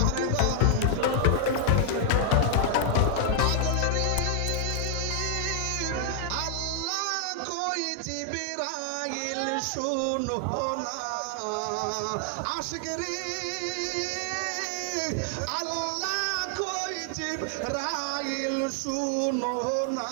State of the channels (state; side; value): different; both; correlation 0.00